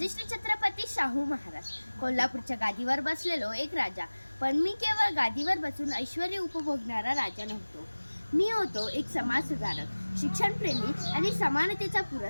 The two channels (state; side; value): inverted; both; correlation -1.00